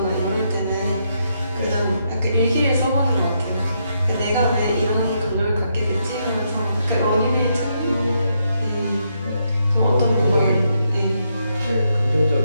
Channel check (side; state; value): both; inverted; correlation -0.79